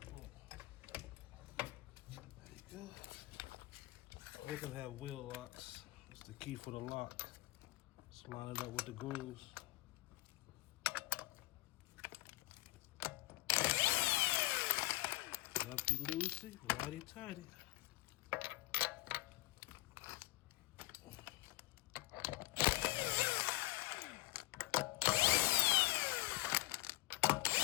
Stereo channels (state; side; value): quieter; right; 19.7 dB